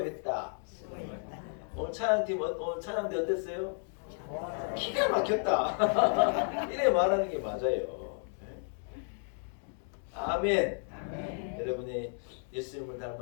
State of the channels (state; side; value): silent; right; 56 dB below the other